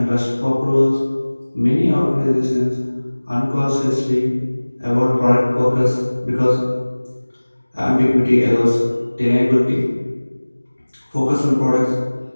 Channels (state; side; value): inverted; both; correlation -1.00